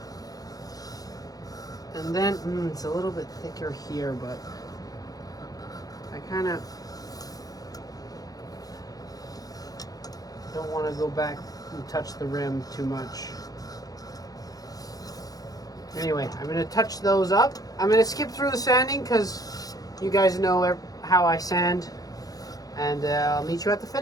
And then, it's a little bit thicker here, but I kind of don't want to go back and touch the rim too much. Anyway, I'm going to touch those up. I'm going to skip through the sanding because you guys know how I sand. And I'll meet you at the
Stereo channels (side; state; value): right; late; 0.18 ms